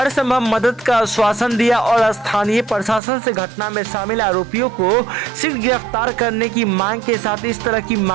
संभव मदद का आश्वासन दिया और स्थानीय प्रशासन से घटना में शामिल आरोपियों को शीघ्र गिरफ्तार करने की मांग के साथ इस तरह की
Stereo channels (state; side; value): drops out; left; at 3.0 s